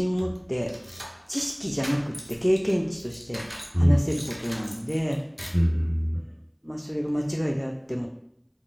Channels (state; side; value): identical; both; correlation 1.00